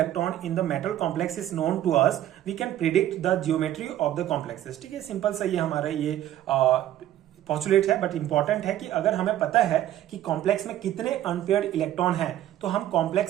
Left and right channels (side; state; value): left; quieter; 12.6 dB